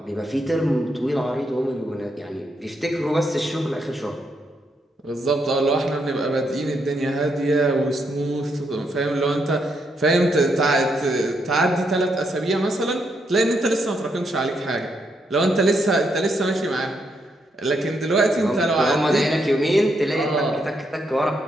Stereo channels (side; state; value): both; normal; correlation 0.78